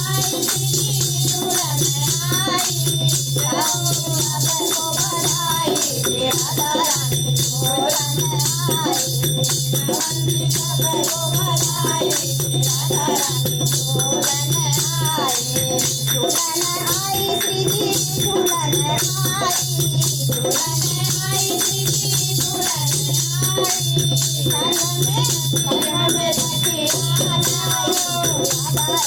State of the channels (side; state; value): both; identical; correlation 1.00